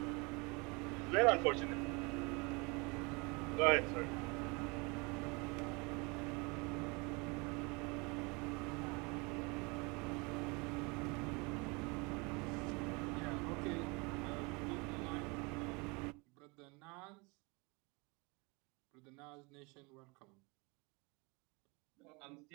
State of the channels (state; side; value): quieter; left; 28.4 dB